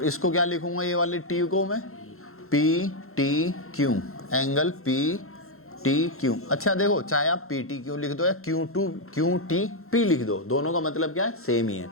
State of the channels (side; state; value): right; late; 0.62 ms